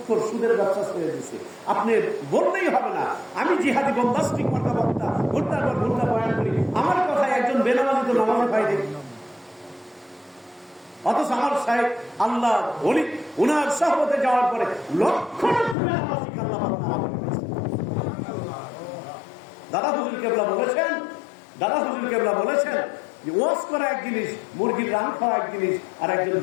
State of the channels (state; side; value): drops out; right; at 15.8 s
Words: সুদের ব্যবসা ছেড়ে দিচ্ছে। আপনি বললেই হবে না আমি জিহাদি বম্বাস্টিক মার্কা বক্তা, ঘুরতার পর ঘুরতা বয়ান করি, আমার কথায় একজন বেনামাজি তো নামাজে পাই দেখি। অথচ আমার সাহেব আল্লাহ ওলি উনার সহবতে যাওয়ার পরে লক্ষ দাদা হুজুর কেবলা বলেছেন যে ওয়াজ করা এক জিনিস, মুরগির রান খাওয়া এক জিনিস, আর একজন